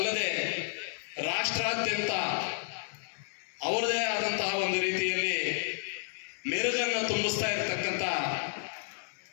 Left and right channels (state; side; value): silent; right; digital silence